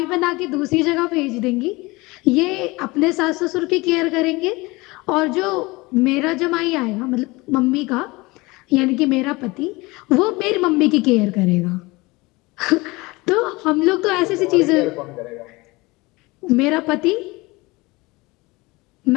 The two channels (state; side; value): quieter; right; 23.0 dB